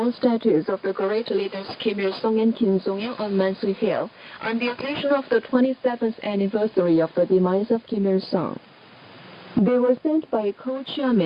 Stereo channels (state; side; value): identical; both; correlation 1.00